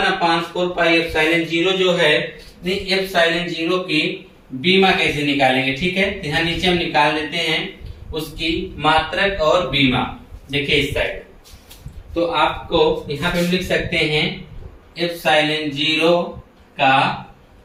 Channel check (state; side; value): identical; both; correlation 1.00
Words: जो है, ε0 की बीमा कैसे निकालेंगे। ठीक है, यहाँ नीचे हम निकाल लेते हैं उसकी मात्रक और बीमा। देखिए इस साइड, तो आपको यहाँ पे हम लिख सकते हैं ε0 का